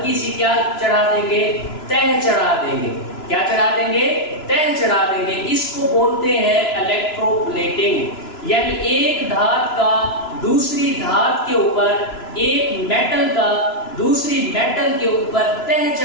सी क्या चढ़ा देंगे? तह चढ़ा देंगे। क्या चढ़ा देंगे? तह चढ़ा देंगे। इसको बोलते हैं इलेक्ट्रोप्लेटिंग। यानी एक धात का दूसरी धात के ऊपर, एक मेटल का दूसरी मेटल के ऊपर तह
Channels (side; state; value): right; late; 3.0 ms